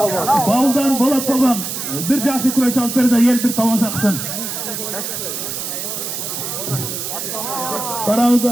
Bağıldan Bolat Palvan. Bir jaşı kureş alıp berdi yel bir tamaşa kısın.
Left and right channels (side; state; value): right; noise; hiss, 5 dB below the sound